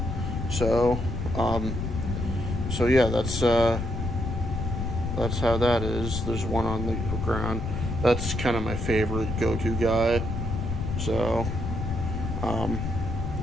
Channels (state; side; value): noise; left; rumble, 3 dB below the sound